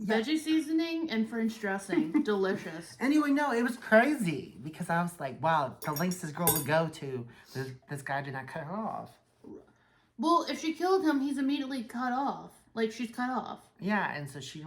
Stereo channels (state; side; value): identical; both; correlation 1.00